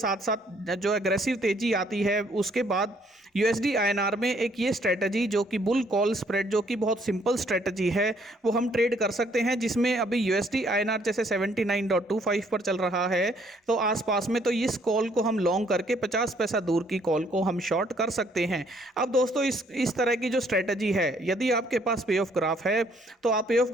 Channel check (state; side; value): normal; both; correlation 0.65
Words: साथ जो एग्रेसिव तेजी आती है, उसके बाद USD INR में एक ये स्ट्रेटजी जो कि बुल कॉल स्प्रेड, जो कि बहुत सिंपल स्ट्रेटजी है, वो हम ट्रेड कर सकते हैं, जिसमें अभी USD INR जैसे 79.25 पर चल रहा है तो आसपास में, तो इस कॉल को हम लॉन्ग करके 50 पैसा दूर की कॉल को हम शॉर्ट कर सकते हैं। अब दोस्तों इस तरह की जो स्ट्रेटजी है, यदि आपके पास पे ऑफ ग्राफ है तो आप पे ऑफ